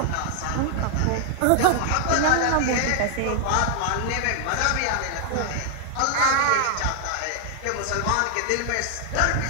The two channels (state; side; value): different; both; correlation 0.00